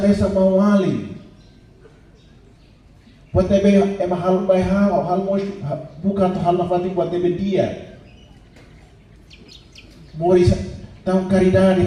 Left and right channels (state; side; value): identical; both; correlation 1.00